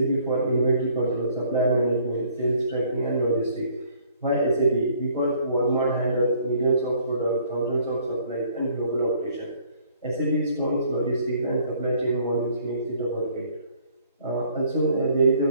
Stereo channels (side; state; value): both; inverted; correlation -0.61